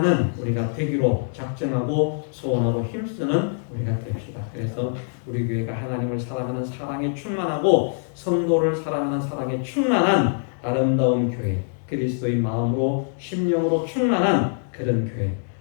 우리가 되기로 작정하고 소원하고 힘쓰는 우리가 됩시다. 그래서 우리 교회가 하나님을 사랑하는 사랑에 충만하고 성도를 사랑하는 사랑에 충만한 아름다운 교회, 그리스도의 마음으로 심령으로 충만한 그런 교회,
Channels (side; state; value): right; silent; digital silence